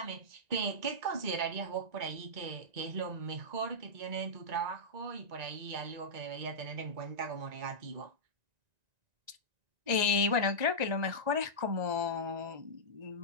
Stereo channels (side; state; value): left; late; 1.9 ms